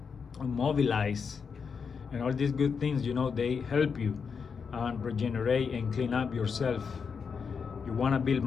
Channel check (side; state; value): right; quieter; 5.9 dB